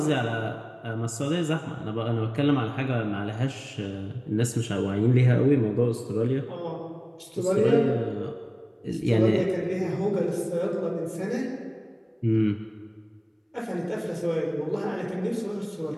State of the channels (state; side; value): identical; both; correlation 1.00